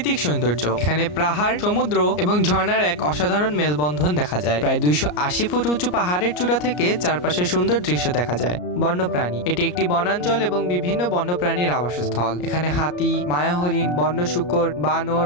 সৌন্দর্য, এখানে পাহাড়, সমুদ্র এবং ঝর্ণার এক অসাধারণ মেলবন্ধন দেখা যায়। প্রায় 280 ফুট উঁচু পাহাড়ের চূড়া থেকে চারপাশে সুন্দর দৃশ্য দেখা যায়। বন্যপ্রাণী, এটি একটি বনাঞ্চল এবং বিভিন্ন বন্যপ্রাণীর আবাসস্থল। এখানে হাতি, মায়া হরিণ, বন্য শূকর, বানর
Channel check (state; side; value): late; right; 34 ms